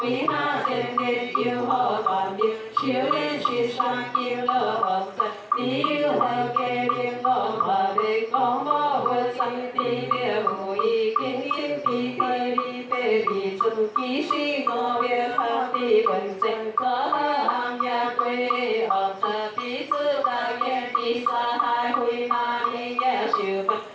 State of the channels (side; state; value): both; identical; correlation 1.00